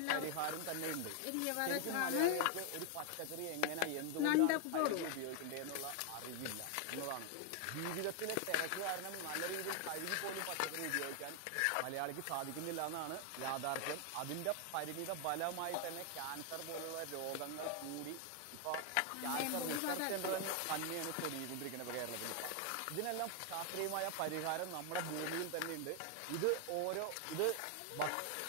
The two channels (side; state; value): both; different; correlation 0.00